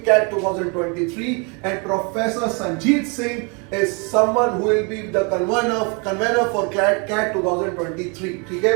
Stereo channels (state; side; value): quieter; left; 33.1 dB